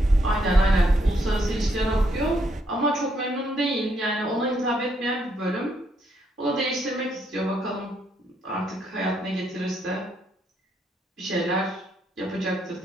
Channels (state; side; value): normal; both; correlation 0.74